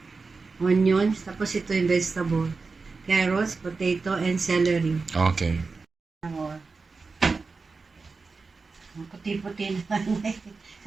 onions, tapos ito yung vegetable, carrots, potato, and celery. Okay. Ang puti-puti naman.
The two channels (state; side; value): quieter; left; 4.3 dB